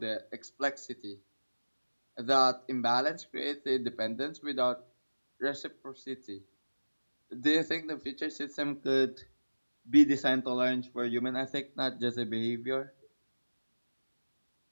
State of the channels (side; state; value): both; inverted; correlation -1.00